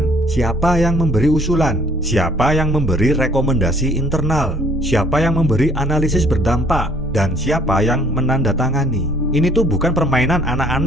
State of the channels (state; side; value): normal; both; correlation 0.59